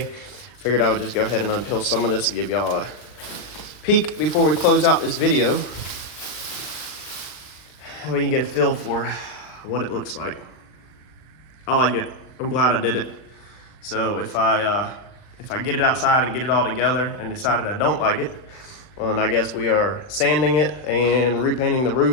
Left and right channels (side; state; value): right; late; 39 ms